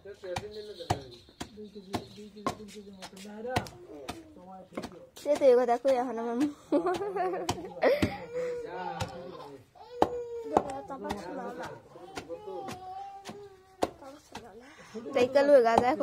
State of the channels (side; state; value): both; identical; correlation 1.00